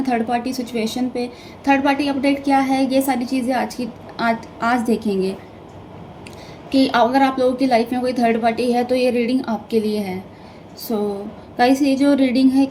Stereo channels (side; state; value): both; identical; correlation 1.00